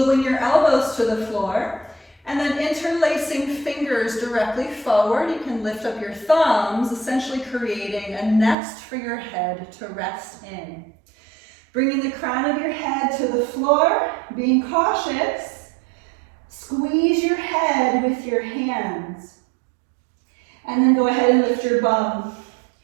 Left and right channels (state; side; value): drops out; left; at 8.6 s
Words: your elbows to the floor, and then interlacing fingers directly forward. You can lift up your thumbs, essentially creating a nest for your head to rest in. Bringing the crown of your head to the floor, being cautious. Squeeze your head with your hands. And then go ahead and lift your bum.